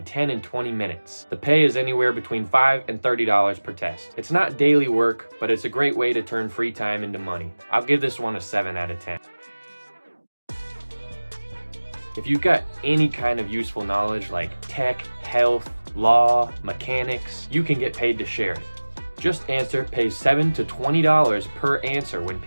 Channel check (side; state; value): both; inverted; correlation -1.00